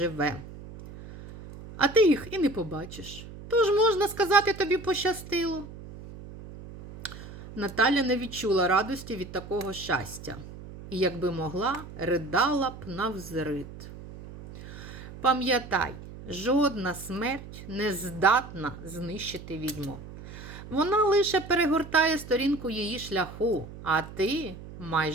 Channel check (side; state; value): right; noise; hum, 14 dB below the sound